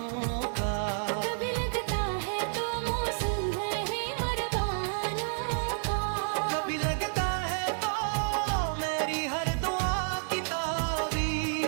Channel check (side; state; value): left; silent; 58 dB below the other